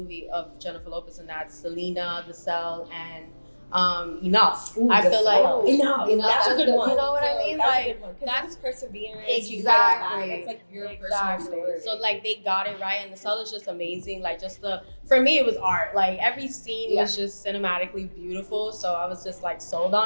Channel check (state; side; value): inverted; both; correlation -1.00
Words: of Jennifer Lopez, and that's Selena, The Cell, and Enough. Ooh, I feel like Enough. That's a good one. You know what I mean? Like that's perseverance. Exactly. It's like your personal story. So like they got it right, and The Cell is just amazing. Like just for me, it was art. Like every scene was just cinematically beautiful. So I was just like sold